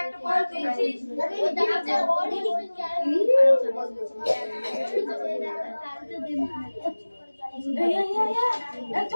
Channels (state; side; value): inverted; both; correlation -1.00